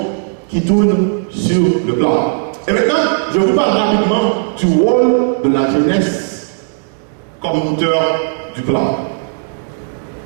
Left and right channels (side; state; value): left; silent; digital silence